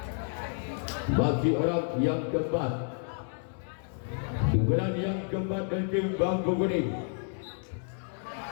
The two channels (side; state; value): right; silent; 58 dB below the other